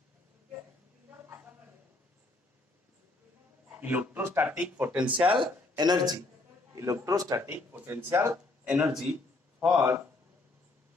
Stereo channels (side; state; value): right; quieter; 3.1 dB